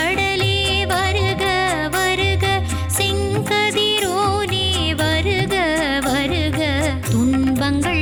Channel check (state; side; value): identical; both; correlation 1.00